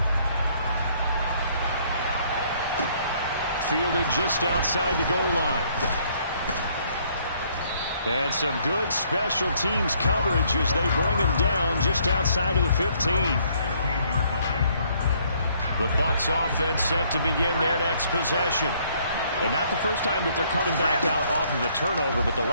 Fielded just outside the goal line. And some good special teams coverage as they bring him down just outside of the 15. The Bucs offense set to begin their next possession. And not the first time that they're coming back out off of a turnover, but the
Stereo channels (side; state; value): both; inverted; correlation -0.65